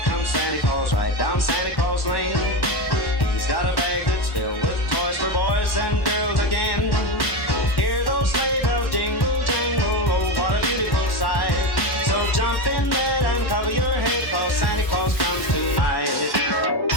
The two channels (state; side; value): late; right; 1.1 ms